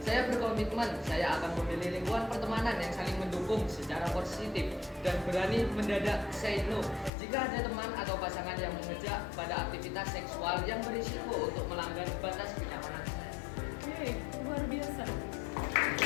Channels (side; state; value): right; drops out; at 7.1 s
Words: Saya berkomitmen, saya akan memilih lingkungan pertemanan yang saling mendukung secara positif dan berani mendadak say no jika ada teman atau pasangan yang mengejak pada aktivitas seksual yang berisiko untuk melanggar batas kenyamanan. Oke, luar biasa.